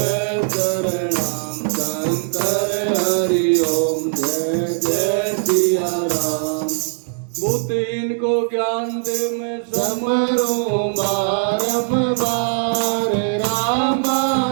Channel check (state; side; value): silent; left; 65 dB below the other